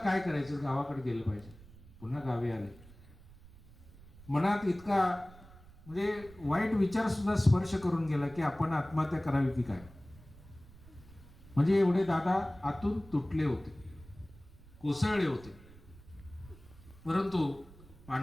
करायचं, गावाकडे गेलं पाहिजे. पुन्हा गावी आले. मनात इतका म्हणजे वाईट विचार सुद्धा स्पर्श करून गेला की आपण आत्महत्या करावी की काय. म्हणजे एवढे दादा आतून तुटले होते, कोसळले होते. परंतु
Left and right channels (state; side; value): noise; right; rumble, 21 dB below the sound